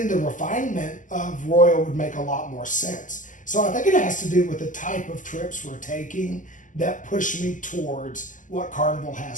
the refinement of Royal would make a lot more sense. So I think it has to do with the type of trips we're taking that push me towards what Carnival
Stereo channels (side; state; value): right; late; 0.37 ms